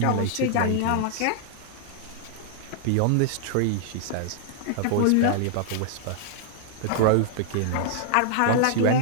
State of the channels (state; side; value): different; both; correlation -0.01